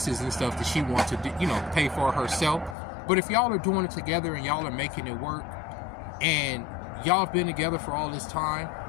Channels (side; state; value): right; drops out; at 2.8 s